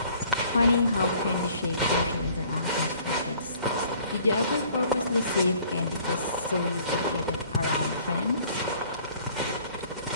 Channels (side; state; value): both; inverted; correlation -0.56